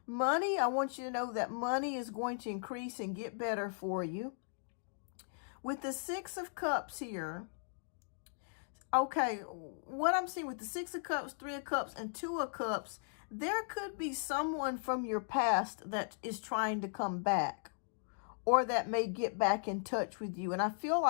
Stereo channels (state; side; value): silent; right; digital silence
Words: Money, I want you to know that money is going to increase and get better for you. With the Six of Cups here, okay, what I'm seeing with the Six of Cups, Three of Cups, and Two of Cups, there could be someone from your past that is trying to come back, or that may get back in touch with you. And I feel